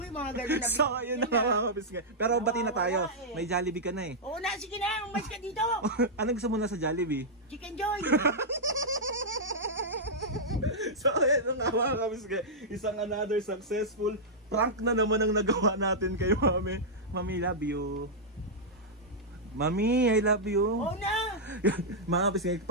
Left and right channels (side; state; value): both; normal; correlation -0.09